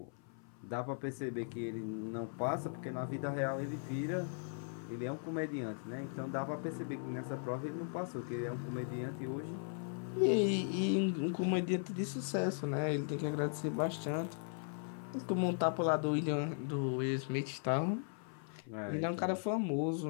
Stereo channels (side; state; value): right; silent; 52 dB below the other